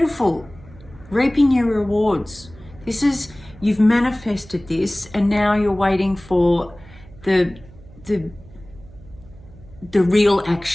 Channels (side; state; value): right; noise; hum, 22 dB below the sound